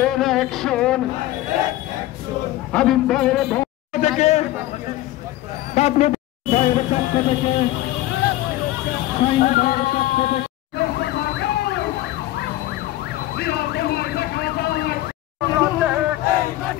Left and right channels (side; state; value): right; quieter; 15.8 dB